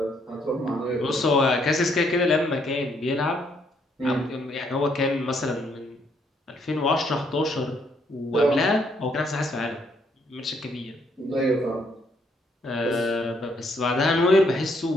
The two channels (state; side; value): normal; both; correlation 0.71